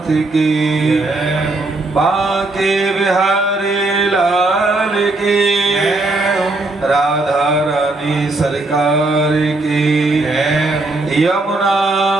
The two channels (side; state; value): left; quieter; 3.0 dB